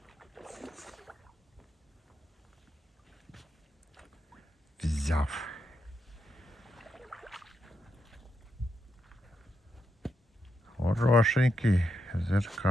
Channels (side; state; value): both; normal; correlation 0.83